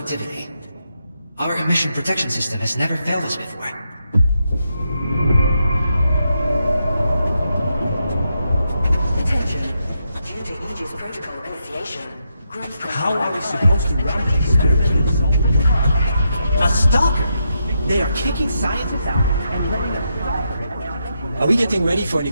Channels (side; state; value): both; inverted; correlation -0.83